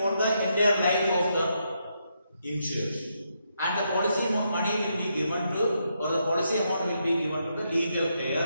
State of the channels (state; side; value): inverted; both; correlation -0.79